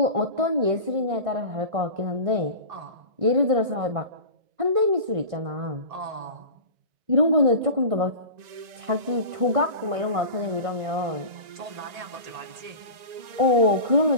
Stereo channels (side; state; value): left; late; 1.9 ms